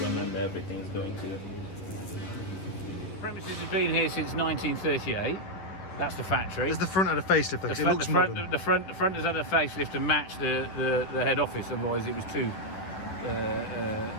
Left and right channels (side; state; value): right; late; 11 ms